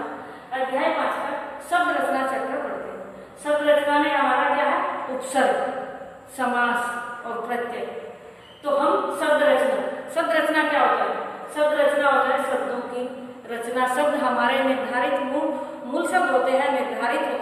अध्याय 5 का शब्द रचना चैप्टर पढ़ते हैं। शब्द रचना में हमारा क्या है? उपसर्ग, समास और प्रत्यय। तो हम शब्द रचना क्या होता है? शब्द रचना होता है शब्दों की रचना। शब्द हमारे निर्धारित मूल शब्द होते हैं, निर्धारित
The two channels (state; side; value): identical; both; correlation 1.00